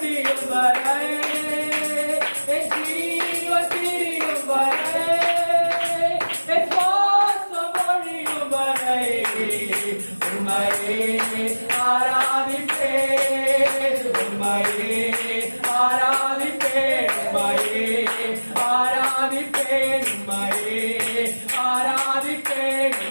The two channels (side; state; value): both; inverted; correlation -1.00